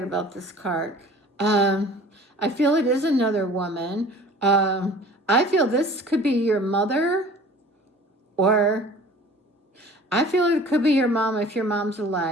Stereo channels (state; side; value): normal; both; correlation 0.46